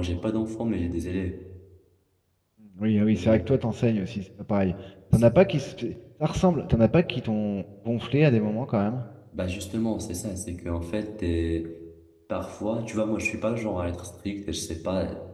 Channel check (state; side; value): identical; both; correlation 1.00